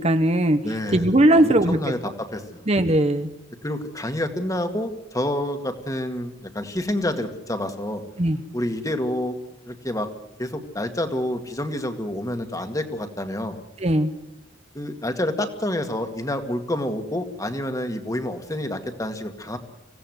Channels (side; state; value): both; normal; correlation 0.69